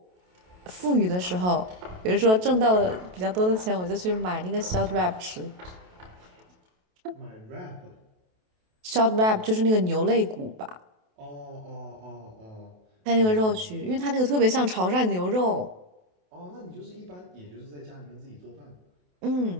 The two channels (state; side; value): late; left; 28 ms